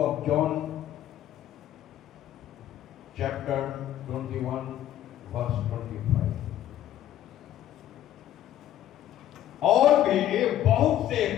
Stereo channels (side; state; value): right; quieter; 12.1 dB